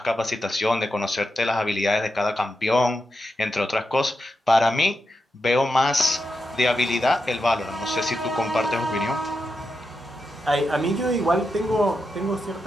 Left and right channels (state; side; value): normal; both; correlation 0.87